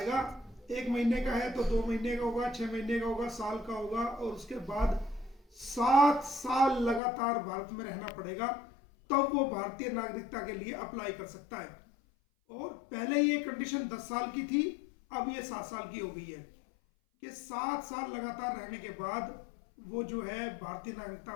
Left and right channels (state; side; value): drops out; right; at 7.0 s